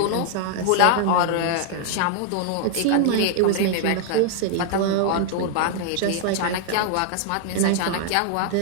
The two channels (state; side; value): different; both; correlation -0.01